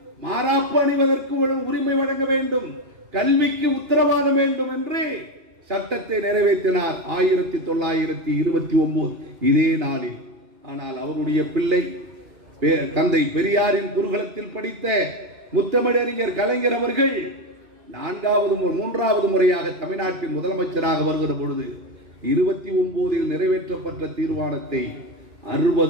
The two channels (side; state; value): left; late; 2.4 ms